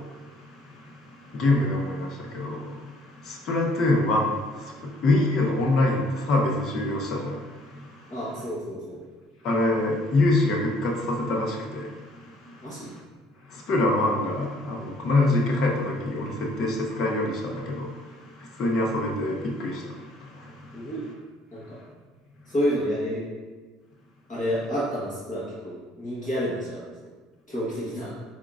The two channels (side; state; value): both; normal; correlation 0.63